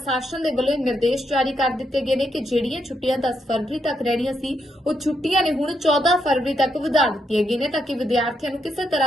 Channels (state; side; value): normal; both; correlation 0.80